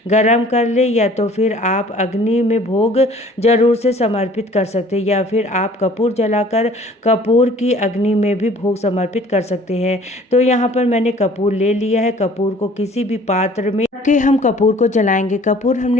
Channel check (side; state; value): both; normal; correlation 0.52